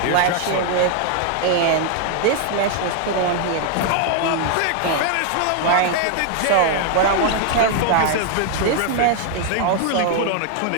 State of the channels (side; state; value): both; different; correlation 0.00